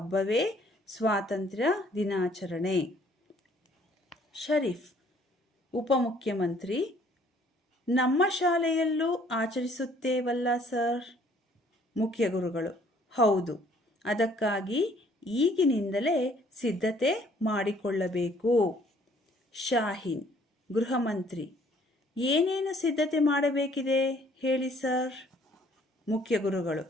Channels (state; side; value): normal; both; correlation 0.60